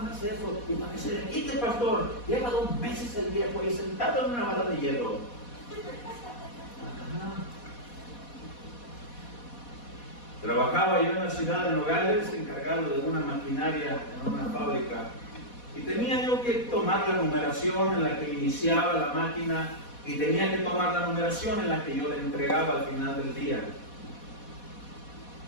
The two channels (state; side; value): late; right; 4.1 ms